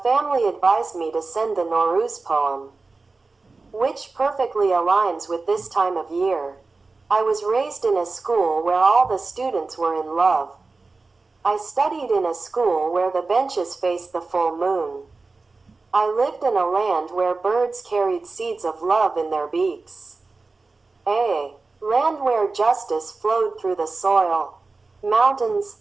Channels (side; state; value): left; quieter; 3.8 dB